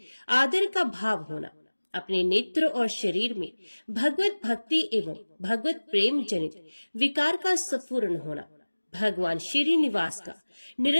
आदर का भाव होना, अपने नेत्र और शरीर में भगवत भक्ति एवं भगवत प्रेम जनित विकार का स्फुरण होना, भगवान श्रीनिवास का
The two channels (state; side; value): inverted; both; correlation -1.00